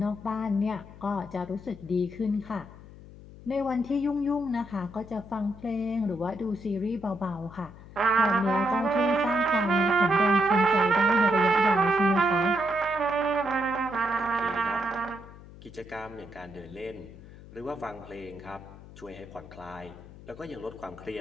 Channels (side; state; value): left; noise; hum, 18 dB below the sound